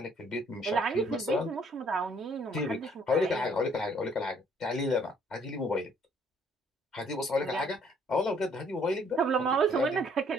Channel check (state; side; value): normal; both; correlation 0.63